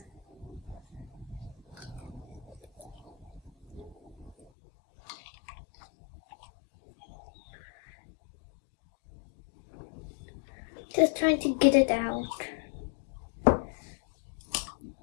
Just trying to get it out.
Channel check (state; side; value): drops out; right; at 4.5 s